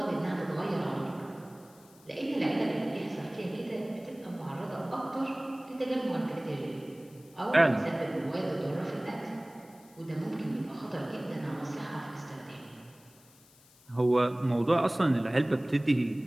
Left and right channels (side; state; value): left; noise; hiss, 27 dB below the sound